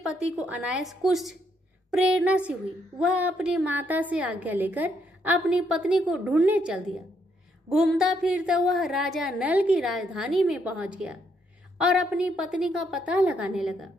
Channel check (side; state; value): both; normal; correlation 0.74